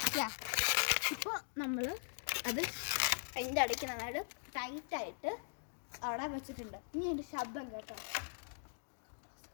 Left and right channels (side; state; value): right; silent; digital silence